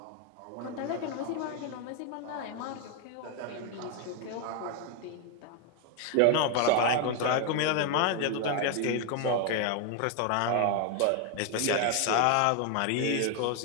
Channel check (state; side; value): different; both; correlation 0.01